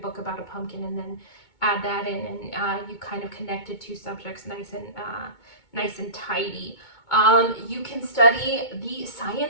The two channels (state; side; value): late; right; 2.2 ms